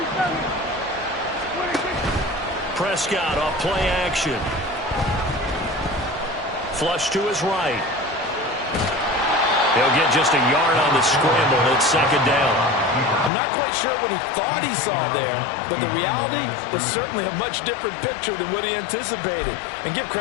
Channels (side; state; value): right; drops out; at 13.3 s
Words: Prescott off play action. Flush to his right. He'll get just a yard on the scramble. It's 2nd down. I'm not quite sure what he thought he saw there, but the reality was certainly a much different picture than what he anticipated. And give